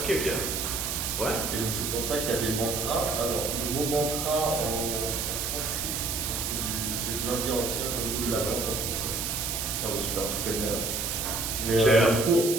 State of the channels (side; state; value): right; noise; hiss, 1 dB below the sound